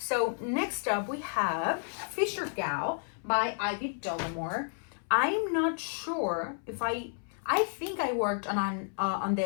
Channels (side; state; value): right; silent; 57 dB below the other